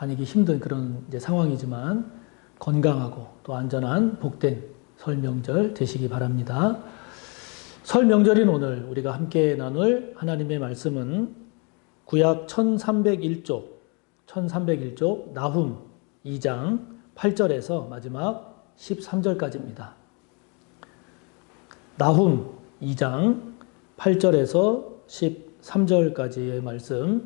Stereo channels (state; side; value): quieter; right; 33.4 dB